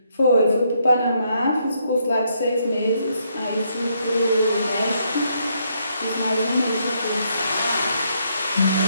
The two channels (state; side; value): inverted; both; correlation -0.74